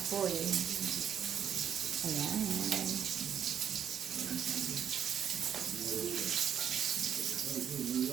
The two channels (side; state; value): left; quieter; 8.7 dB